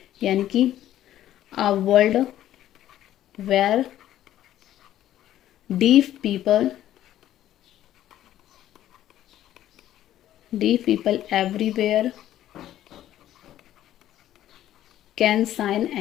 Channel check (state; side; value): quieter; right; 12.6 dB